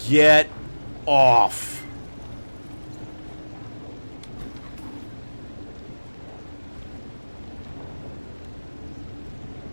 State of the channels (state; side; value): inverted; both; correlation -1.00